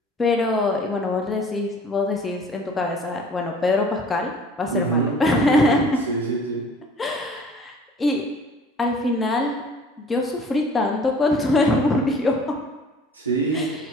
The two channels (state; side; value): normal; both; correlation 0.49